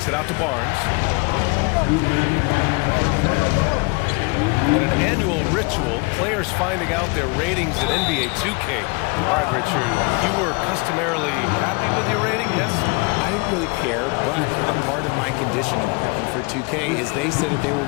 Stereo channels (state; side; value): quieter; right; 29.3 dB